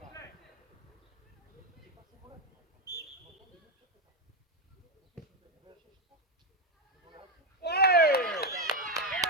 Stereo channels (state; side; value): normal; both; correlation 0.07